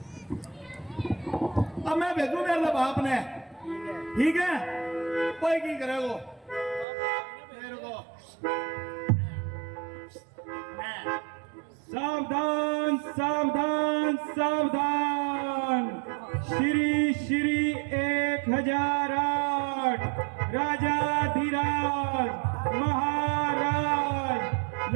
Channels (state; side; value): drops out; left; at 6.9 s